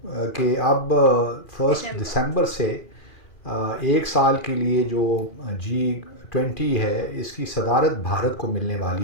कि अब 1 दिसंबर से एक साल के लिए जो G20 है इसकी सदारत भारत को मिलने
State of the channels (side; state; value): right; late; 2.4 ms